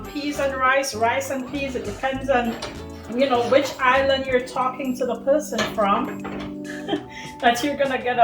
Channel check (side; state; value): both; identical; correlation 1.00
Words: peas and rice and peas. It depends on, you know, which island you're talking to the person from. That you're gonna get